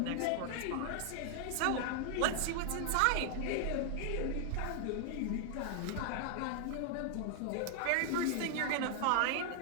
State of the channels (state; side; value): different; both; correlation 0.00